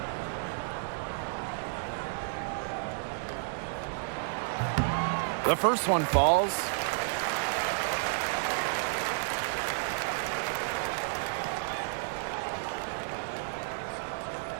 The first one falls.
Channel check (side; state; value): left; silent; 57 dB below the other